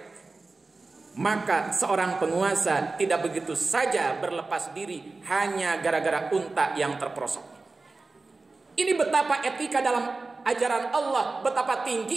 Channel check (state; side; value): quieter; left; 3.6 dB